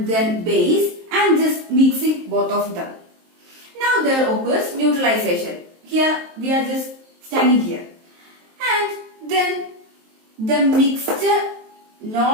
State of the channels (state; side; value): late; left; 23 ms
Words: then base and just mixing both of them. Now there occurs neutralization. Here we are just standing here. And then the mixture